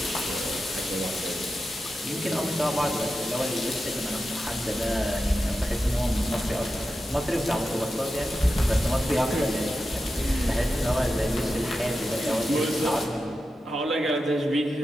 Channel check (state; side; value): normal; both; correlation 0.91